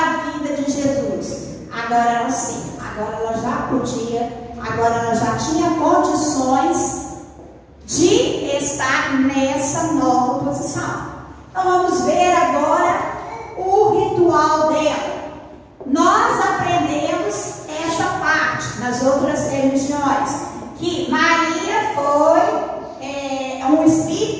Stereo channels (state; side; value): identical; both; correlation 1.00